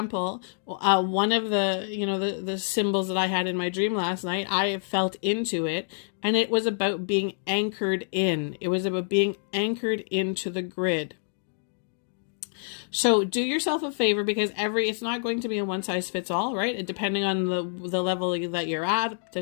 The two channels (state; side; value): silent; right; digital silence